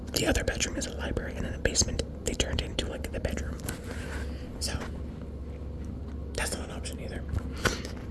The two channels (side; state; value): both; identical; correlation 1.00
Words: the other bedroom is a library, and in the basement they turned into like the bedroom. So that's not an option either.